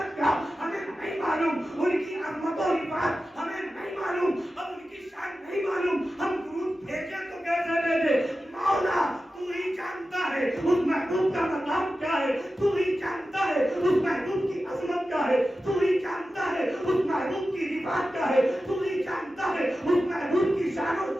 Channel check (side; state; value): both; normal; correlation 0.93